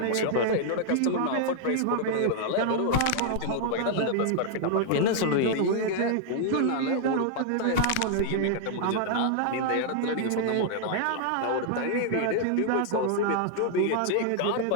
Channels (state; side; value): different; both; correlation 0.00